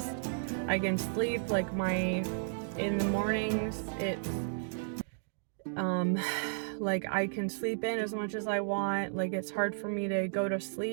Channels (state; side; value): silent; left; digital silence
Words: I can sleep, in the mornings, it's, I can sleep in as much as I want. It's hard for me to go to